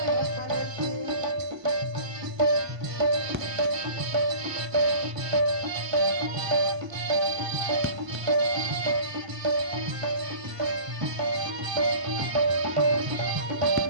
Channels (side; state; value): left; late; 1.5 ms